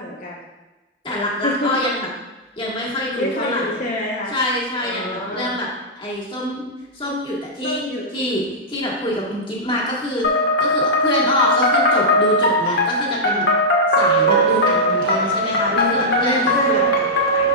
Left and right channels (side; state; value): both; normal; correlation -0.09